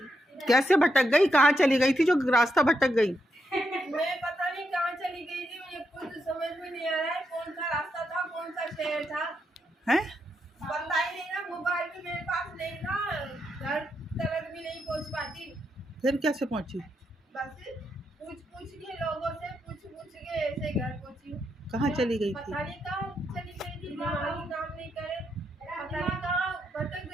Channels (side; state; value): both; normal; correlation 0.81